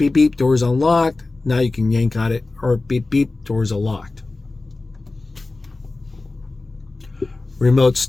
beep, door's unlocked. Now you can yank on it, or beep, beep, door's unlocked. Remote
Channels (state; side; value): quieter; right; 3.3 dB